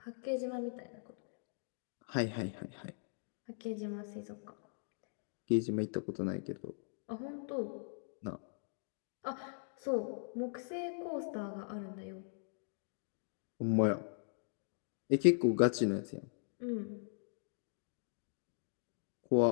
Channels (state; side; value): silent; right; digital silence